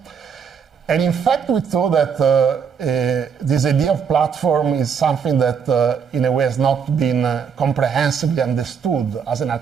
And in fact, we thought that this idea of platform is something that, in a way, has not been comprehensively understood as an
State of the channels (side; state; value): left; quieter; 6.7 dB